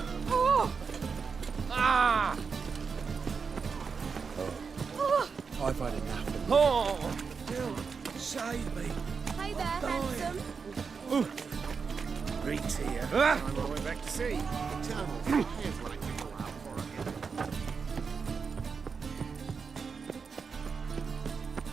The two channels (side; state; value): left; quieter; 5.5 dB